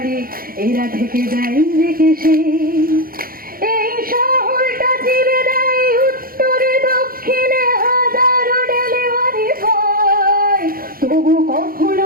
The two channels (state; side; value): late; left; 0.42 ms